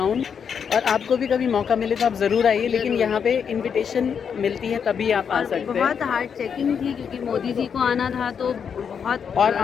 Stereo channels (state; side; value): quieter; right; 7.1 dB